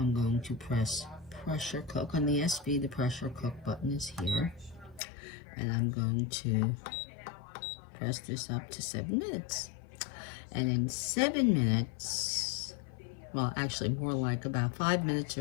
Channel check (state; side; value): drops out; right; at 5.0 s